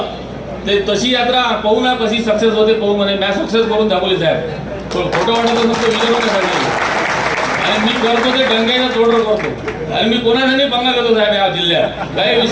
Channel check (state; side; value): identical; both; correlation 1.00